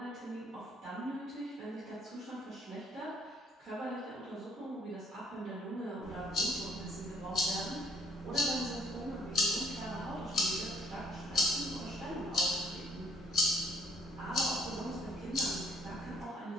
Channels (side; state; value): both; normal; correlation 0.64